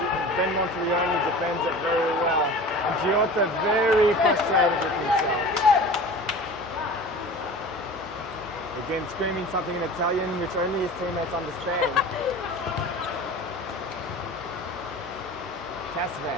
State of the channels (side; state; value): both; normal; correlation 0.38